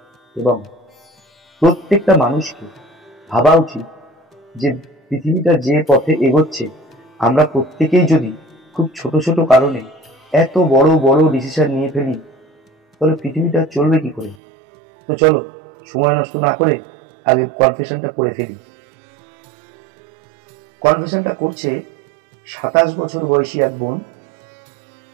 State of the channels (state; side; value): drops out; left; at 14.4 s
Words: এবং প্রত্যেকটা মানুষকে ভাবা উচিত যে পৃথিবীটা যে পথে এগোচ্ছে আমরা প্রত্যেকেই যদি খুব ছোট ছোট কারণে এত বড় বড় ডিসিশন নিয়ে ফেলি তাহলে পৃথিবীটা চলবে কি করে। তো চলো সময় নষ্ট না করে আগে কনফেশনটা পড়ে ফেলি। কনফেশনটা করছে 27 বছর বয়সী এক বোন,